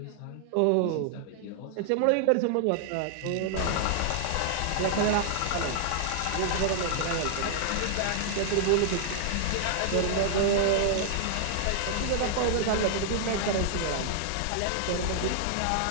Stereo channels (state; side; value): different; both; correlation -0.01